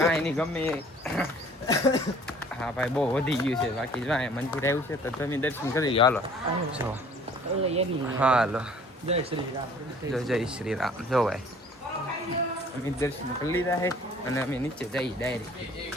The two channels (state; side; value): normal; both; correlation 0.53